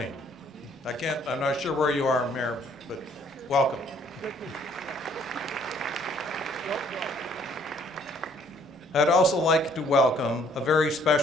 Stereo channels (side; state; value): both; normal; correlation 0.62